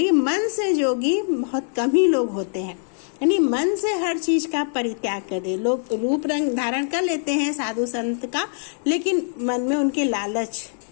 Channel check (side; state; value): right; silent; digital silence